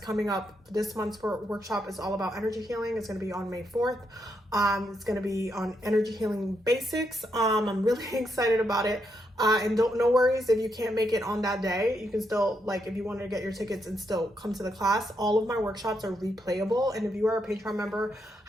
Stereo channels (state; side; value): normal; both; correlation 0.79